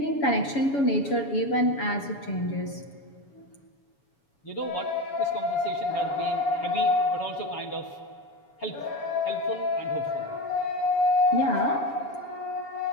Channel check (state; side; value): late; right; 7.1 ms